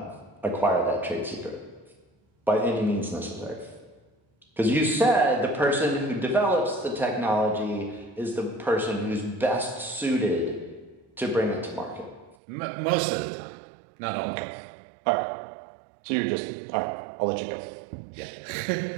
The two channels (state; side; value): drops out; left; at 12.4 s